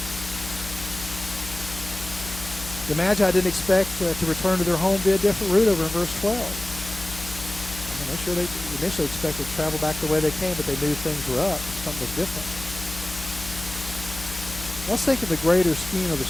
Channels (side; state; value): left; noise; hum, 12 dB below the sound